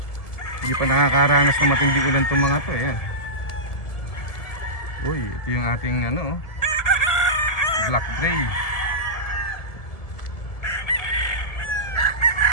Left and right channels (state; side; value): late; right; 1.7 ms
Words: hindi pa nakakaranas ng matinding ulan itong mga to. Ayan. Uy, ito yung ating ano, black gray.